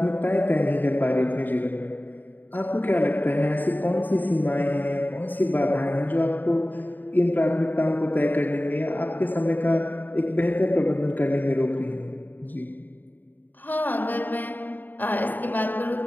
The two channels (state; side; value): late; right; 0.088 ms